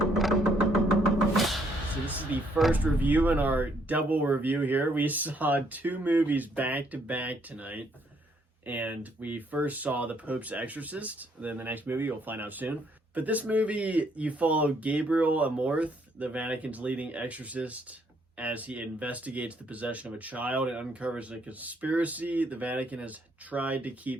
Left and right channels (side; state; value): both; normal; correlation 0.69